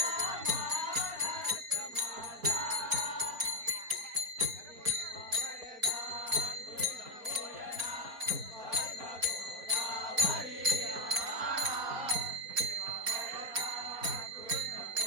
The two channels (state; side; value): late; left; 4.2 ms